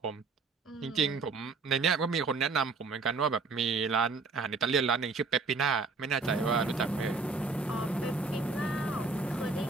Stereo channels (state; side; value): quieter; left; 4.2 dB